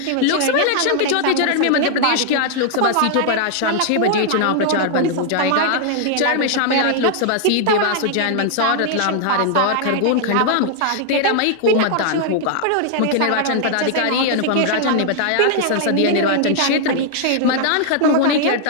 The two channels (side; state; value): both; different; correlation 0.00